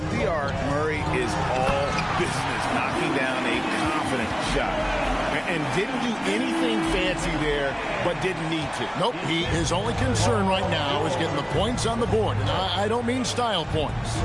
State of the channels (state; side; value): identical; both; correlation 1.00